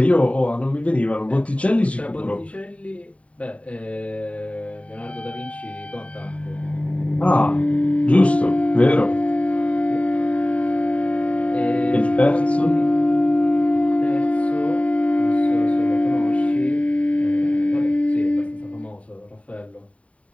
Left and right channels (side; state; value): right; late; 0.065 ms